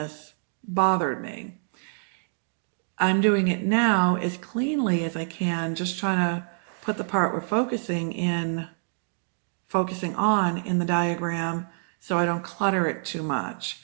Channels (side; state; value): left; silent; digital silence